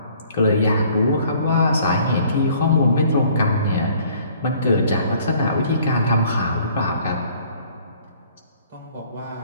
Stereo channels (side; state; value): both; inverted; correlation -0.57